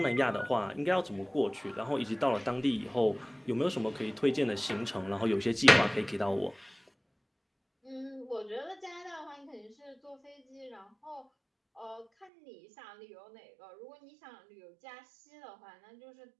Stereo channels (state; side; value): drops out; left; at 12.3 s